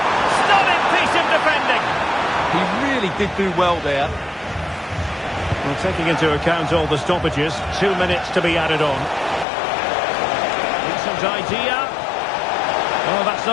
Stunning piece of defending! He really did do well there. Well, taking into account all the stoppages, 2 minutes to be added on. Decent idea. Oh, that's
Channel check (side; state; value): right; drops out; at 9.5 s